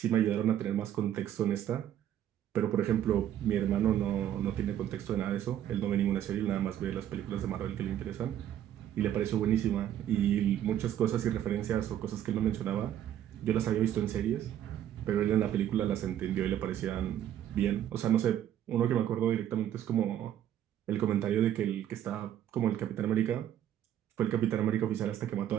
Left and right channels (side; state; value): left; quieter; 11.0 dB